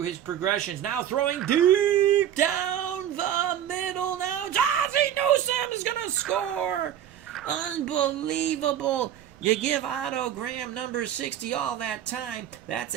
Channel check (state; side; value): quieter; left; 10.4 dB